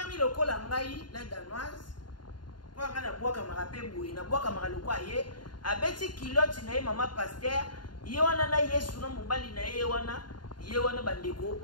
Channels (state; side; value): late; right; 0.71 ms